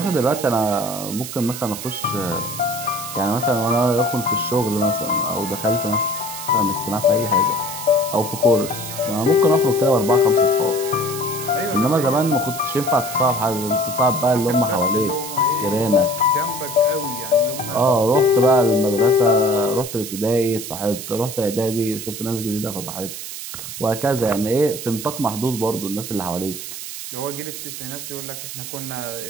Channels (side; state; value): right; noise; hiss, 9 dB below the sound